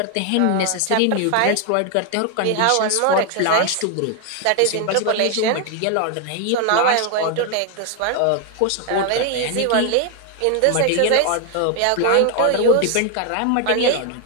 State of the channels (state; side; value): different; both; correlation 0.00